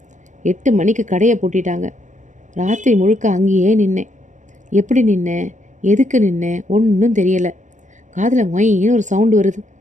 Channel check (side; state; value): left; late; 0.35 ms